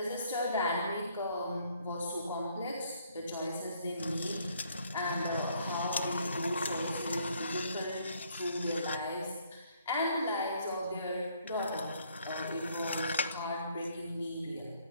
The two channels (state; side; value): inverted; both; correlation -0.66